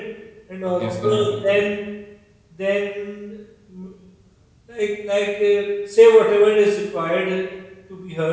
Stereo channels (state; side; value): identical; both; correlation 1.00